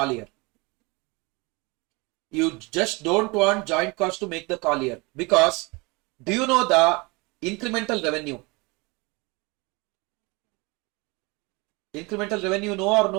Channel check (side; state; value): left; quieter; 26.6 dB